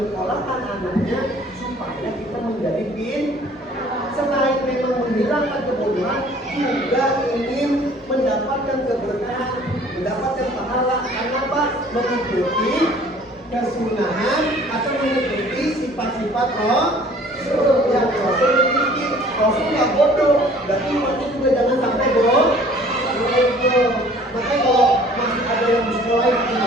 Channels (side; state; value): both; normal; correlation 0.53